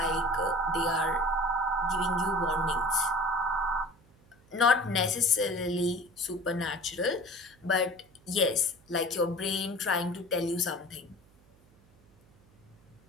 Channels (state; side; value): noise; right; hum, 29 dB below the sound